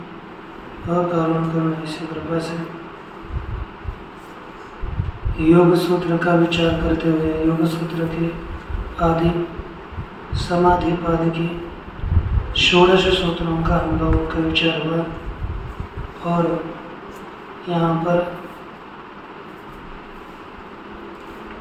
अकारण करुणा से कृपा से योग सूत्र का विचार करते हुए योग सूत्र के आदि समाधि पाद की 16 सूत्रों का हम लोगों का विचार हुआ और यहाँ पर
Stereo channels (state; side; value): identical; both; correlation 1.00